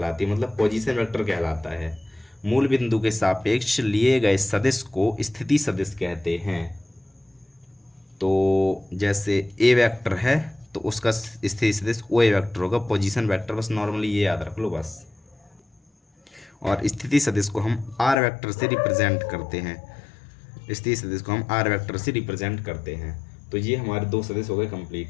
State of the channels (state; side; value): drops out; right; at 18.2 s